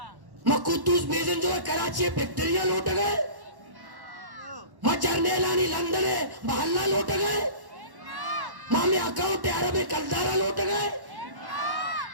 माँ कुद्दूस बेजंजो कराची फैक्ट्रिया लौट गए, माँ जर्नेलानी लंदन महल्ला लौट गए, माँ में अकाउंट अरब कलदारा लौट गए,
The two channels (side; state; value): left; late; 1.1 ms